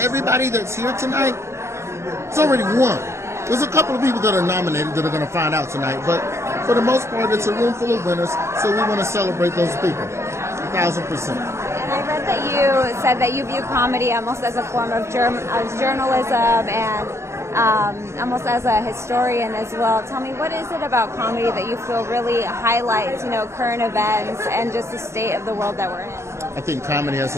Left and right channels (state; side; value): late; left; 0.13 ms